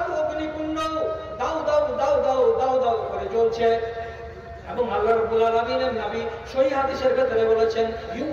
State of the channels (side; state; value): both; identical; correlation 1.00